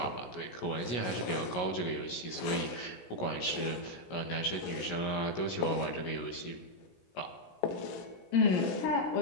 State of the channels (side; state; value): right; late; 16 ms